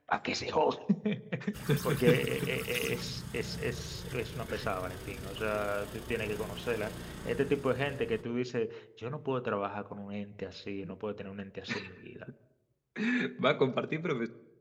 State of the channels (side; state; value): both; identical; correlation 1.00